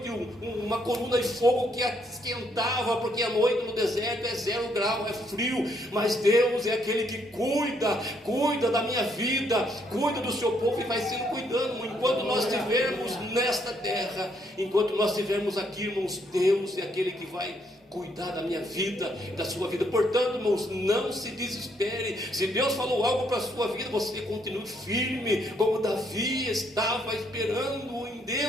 uma coluna de fogo que esquentava, porque a noite no deserto é 0 grau, é frio. Mas Deus é aquele que cuida da minha vida, cuida do seu povo, e vai sendo cuidando, enquanto nós estivermos nesta terra, enquanto nós estivermos aqui, irmãos, Deus é aquele que vai cuidar da minha vida, da sua vida. Portanto, irmãos, não se desespere. Se Deus falou algo para a sua vida, você continue firme, como Davi estava esperando em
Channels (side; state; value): both; normal; correlation 0.72